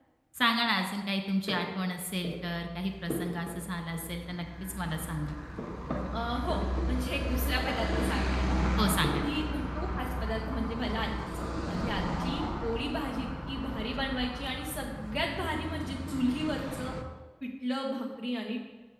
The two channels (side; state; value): both; identical; correlation 1.00